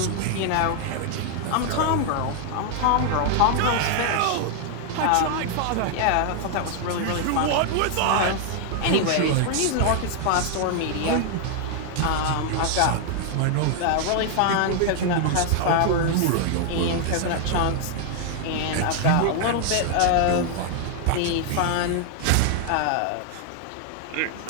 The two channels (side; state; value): both; different; correlation 0.00